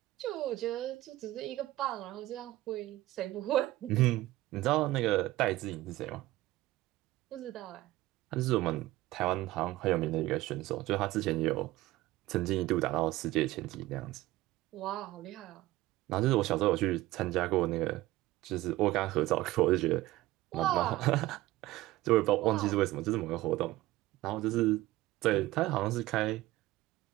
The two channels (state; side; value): quieter; left; 17.2 dB